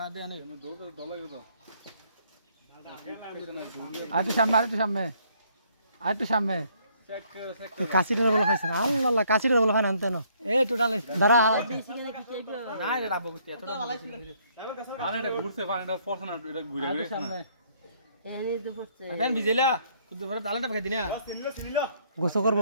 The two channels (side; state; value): both; inverted; correlation -0.66